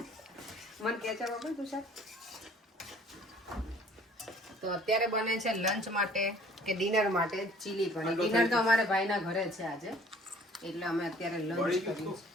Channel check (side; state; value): both; normal; correlation 0.53